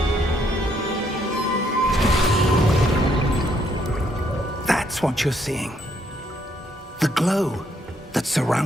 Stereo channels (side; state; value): both; normal; correlation 0.72